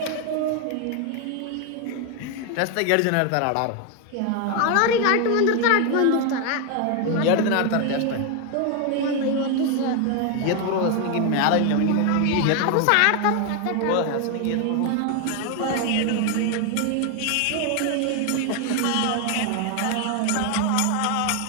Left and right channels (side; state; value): both; different; correlation 0.01